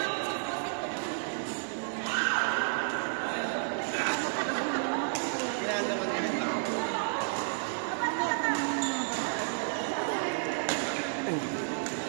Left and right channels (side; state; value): left; silent; digital silence